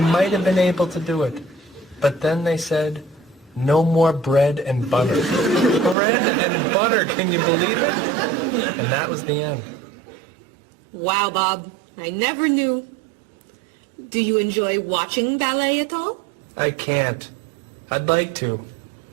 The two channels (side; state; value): left; drops out; at 6.0 s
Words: might have been able to do it. But then they said, no more bread and butter. Bread and butter, can you believe it? And that was the end. Wow, Bob. I never knew. Do you enjoy watching ballet at all? I can't. I'd like to.